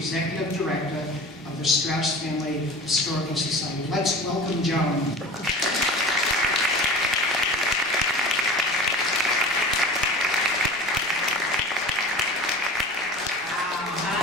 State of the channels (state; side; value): normal; both; correlation 0.37